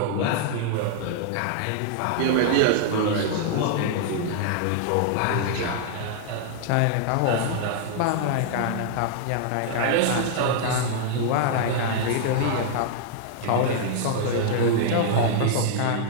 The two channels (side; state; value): both; different; correlation -0.01